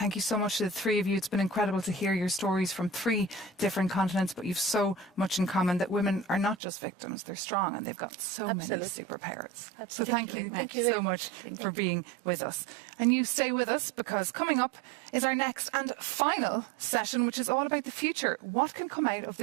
you so much to the three of you. It's been incredible to hear your stories from 3 different continents, but you've so much in common that women are not just victims, they're strong and they've got so many superpowers. So thank you so much for being with us. And you stay with us, because coming up is our next and final session, which is all about the future. What can come out of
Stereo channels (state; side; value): drops out; left; at 6.6 s